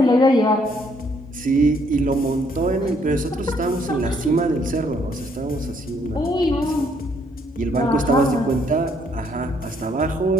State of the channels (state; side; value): normal; both; correlation 0.68